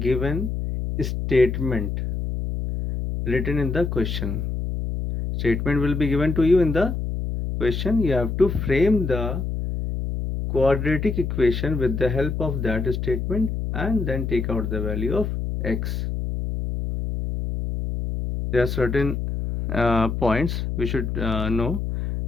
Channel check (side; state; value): left; noise; hum, 3 dB below the sound